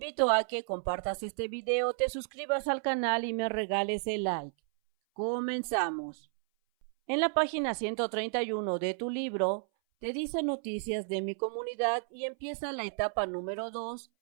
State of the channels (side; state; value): left; silent; 56 dB below the other